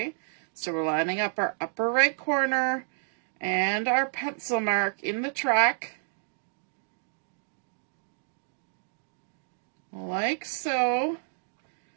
So we're lining up our upper right corner and our pencil mark in the track, like so,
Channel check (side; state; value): left; silent; digital silence